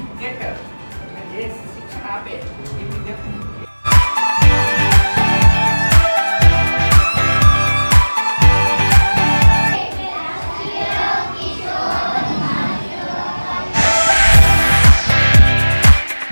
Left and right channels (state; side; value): inverted; both; correlation -1.00